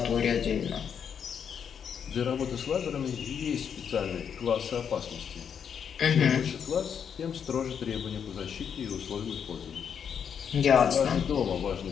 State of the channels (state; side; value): quieter; right; 7.6 dB